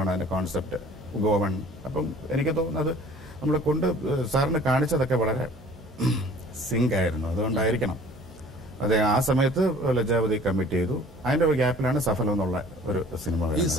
അതിന്റെ കോൺസെപ്റ്റ്, ഗോവൺ. അപ്പം എനിക്ക് തോന്നുന്നത് നമ്മൾ സാറിന് കാണിച്ചതൊക്കെ വളരെ സിങ്ക് ആയിരുന്നു. അതുകൊണ്ടായിരിക്കണം അതെ ആ സമയത്ത് ലജ്ജാവതി കമ്മിറ്റ് ചെയ്തു. അതിന്റെ ഒരു ഗ്യാപ്പിലാണ് സഫലം എന്നുള്ള ഒരു സിനിമ. ഈ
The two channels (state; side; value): normal; both; correlation 0.50